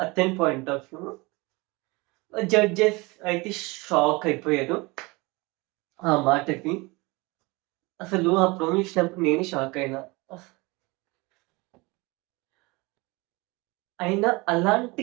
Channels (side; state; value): left; quieter; 24.8 dB